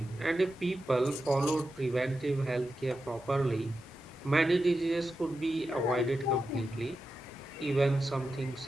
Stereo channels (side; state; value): both; normal; correlation 0.90